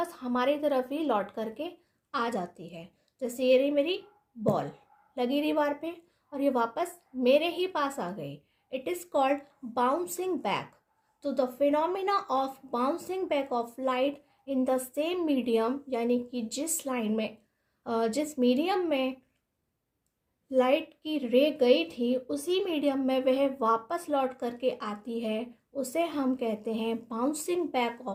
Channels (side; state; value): both; identical; correlation 1.00